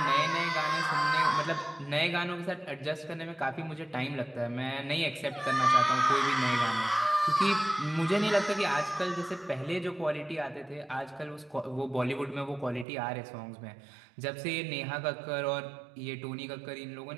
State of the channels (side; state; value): left; drops out; at 12.9 s